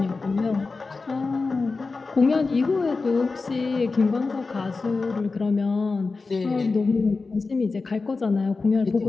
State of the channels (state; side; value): quieter; right; 4.0 dB